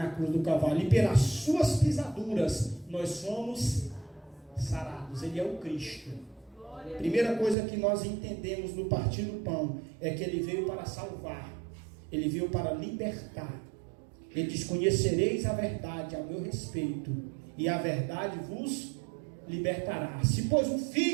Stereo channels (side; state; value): left; drops out; at 7.6 s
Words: cruz do Calvário, e pelas suas pisaduras nós somos sarados. Ele é o Cristo. Primeira coisa que nós entendemos no partir do pão é que ele veio para salvar, ele veio para libertar. Ele diz: conhecereis a verdade a meu respeito, e a verdade vos libertará. Se pois o